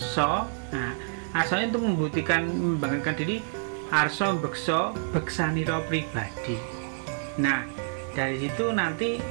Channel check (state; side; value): silent; left; digital silence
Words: Nah, arso itu membanggakan diri. Arso bekso beksaniro pribadi. Nah, dari situ nanti